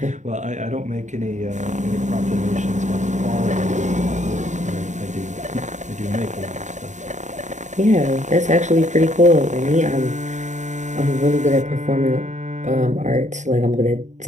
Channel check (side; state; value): left; late; 0.35 ms